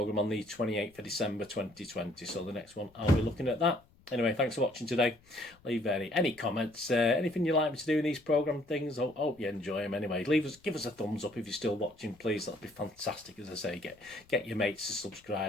on the 28th of December 2020. So the next one, I'll be looking at that. Anyway, thanks for watching today. Leave any comments, anything you'd like me to do in these programme things. I hope you enjoy them anyway. Give us a thumbs up if you're still watching, please. That'd be fantastic. As I say, get your mates to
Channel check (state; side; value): noise; left; rumble, 29 dB below the sound